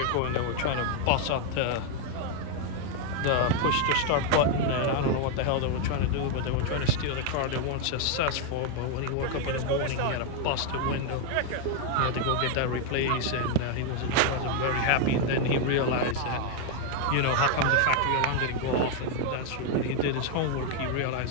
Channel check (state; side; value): different; both; correlation 0.01